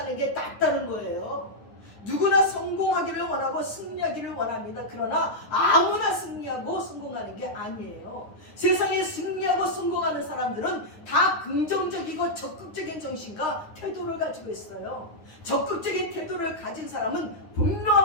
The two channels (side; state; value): right; late; 9.7 ms